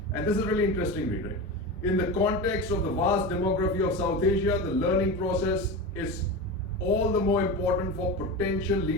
And this is really interesting read, right? In the context of the vast demography of South Asia, the learning process is all the more important for potential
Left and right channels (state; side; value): normal; both; correlation 0.24